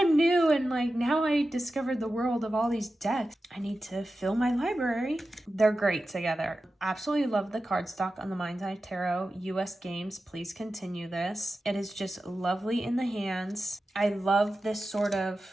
new and like now I discovered the world of all these decks. I need to fill my library. They're great together. Absolutely love the cardstock on the Mind's Eye Tarot. US Games, please continue this. It is just lovely in the hands. I love this sort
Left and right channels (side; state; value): both; normal; correlation 0.93